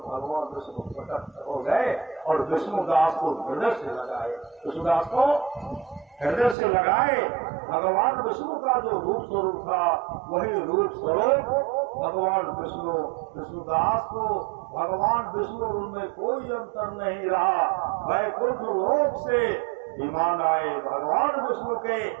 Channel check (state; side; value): drops out; left; at 6.6 s